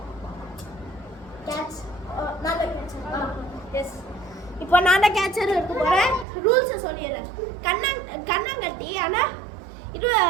Catch. நான் தான் கேட்சர். எஸ். இப்போ நான் தான் கேட்சர் எடுத்து போறேன். ரூல்ஸ் சொல்லிடுறேன். கண்ணாங்கட்டி ஆனா இது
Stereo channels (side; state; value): left; drops out; at 6.2 s